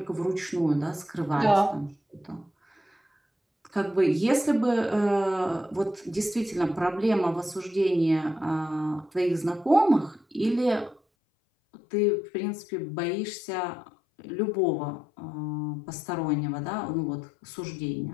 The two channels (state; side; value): drops out; right; at 11.0 s